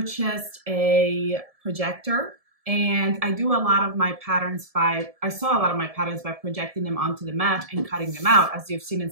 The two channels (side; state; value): left; late; 1.7 ms